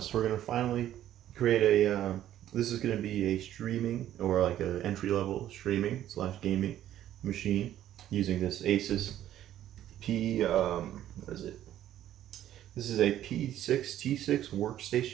we're gonna finally create a. This is gonna be a streaming or like an entry level streaming / gaming machine using this Asus P. What is it? This is a P6T6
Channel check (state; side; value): quieter; left; 12.1 dB